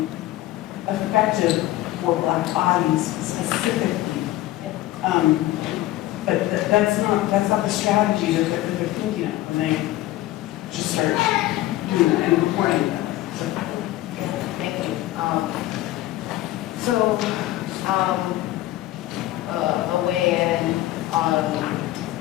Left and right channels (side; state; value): right; quieter; 16.0 dB